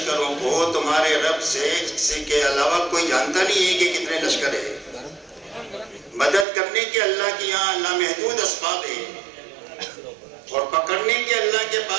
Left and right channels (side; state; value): left; drops out; at 6.5 s